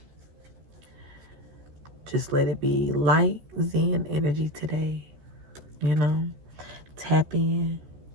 Just let it be light, zen energy today, Tap in,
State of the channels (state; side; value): late; left; 14 ms